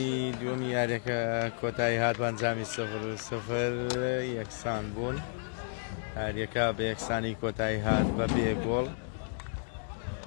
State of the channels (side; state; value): right; silent; digital silence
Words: دووەمی یاریەکە کۆتایی هات بەنجامی 0-0 یەکسان بوون یاریەکە بە یەکسانی کۆتایی هات بە بێ گۆڵ